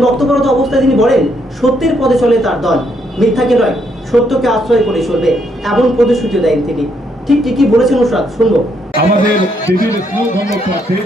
বক্তব্যরত অবস্থায় তিনি বলেন, সত্যের পথে চলে তার দল, মিথ্যাকে নয় সত্যকে আশ্রয় করে চলবে, এমন প্রতিশ্রুতি দেন তিনি। ঠিক কি বলেছেন নুসরাত, শুনবো। আমাদের দিদির স্নেহধন্য প্রার্থী,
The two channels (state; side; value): normal; both; correlation 0.74